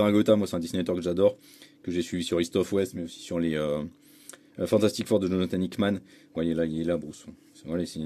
moi c'est un dessinateur que j'adore, que j'ai suivi sur East of West, mais aussi sur les Fantastic Four de Jonathan Hickman. Vous voyez là, il est là Bruce. Voilà, c'est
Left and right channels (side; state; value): both; identical; correlation 1.00